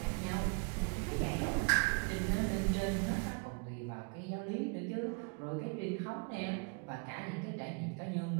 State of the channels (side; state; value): left; quieter; 35.2 dB